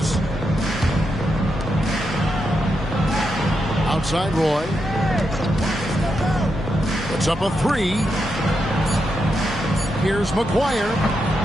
Outside Roy. Puts up a three. Here's McGuire.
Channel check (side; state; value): both; normal; correlation 0.84